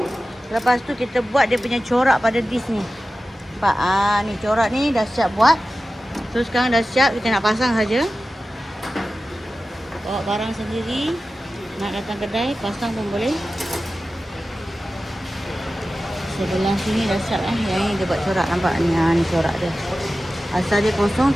Lepas tu kita buat dia punya corak pada disc ni. Nampak? Ni corak ni dah siap buat. So sekarang dah siap, kita nak pasang saja. Bawa barang sendiri, nak datang kedai, pasang pun boleh. Sebelah sini dah siap Yang ni dia buat corak, nampak ni. Ni corak dia. Asal dia kosong,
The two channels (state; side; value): normal; both; correlation 0.95